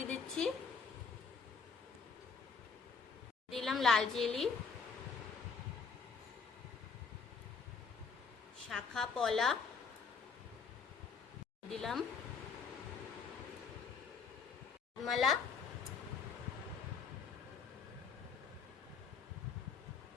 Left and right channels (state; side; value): quieter; right; 5.4 dB